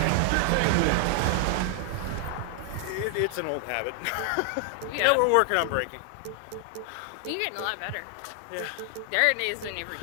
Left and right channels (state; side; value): different; both; correlation 0.00